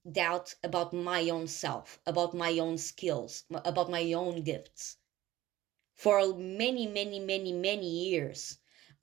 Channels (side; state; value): left; quieter; 15.7 dB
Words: doubt about my own self, about my own skills, about my own gifts. For many, many, many, many years,